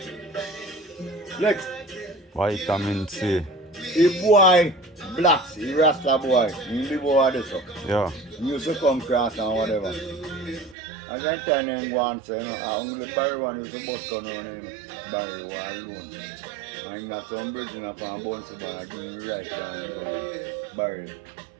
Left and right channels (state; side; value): drops out; left; at 10.8 s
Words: Next. Vitamin C. The boy blacks, the Rasta boy, he live over there so. Yeah. He used to come cross and whatever. And then turn him go and say, I only Barry one used to bust gun on him. Barry one alone. And he got some bridge in a fan bounce bar, give him right down Barry.